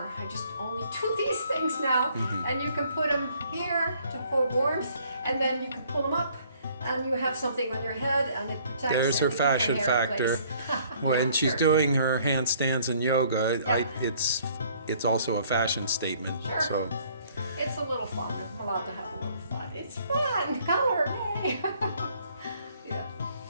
I just only do these things now. And you can put them here for warmth, and then you can pull them up, and you have something on your head, and it protects. there's her and keeps fashion your hair in factor. place. When she's Sure. doing her handstands and yoga, Yeah. it's also a fashion statement. Sure. So It's a little fun. I'm allowed to have a little fun. It's fun. Color, hey. Yeah.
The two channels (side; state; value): both; inverted; correlation -0.61